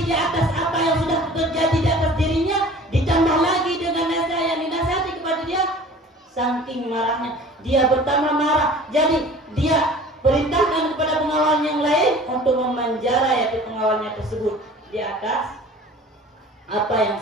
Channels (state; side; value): normal; both; correlation 0.45